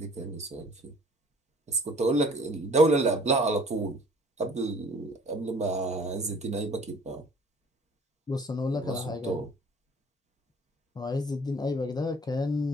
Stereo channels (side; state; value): both; normal; correlation 0.52